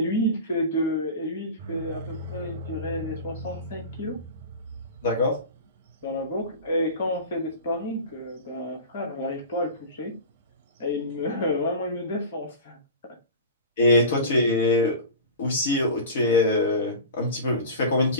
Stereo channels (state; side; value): inverted; both; correlation -0.32